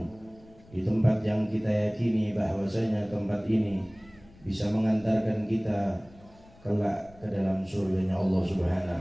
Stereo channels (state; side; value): noise; left; rumble, 25 dB below the sound